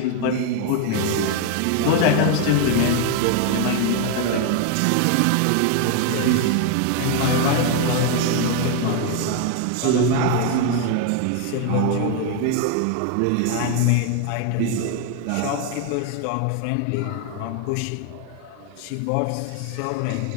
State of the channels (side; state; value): both; different; correlation 0.01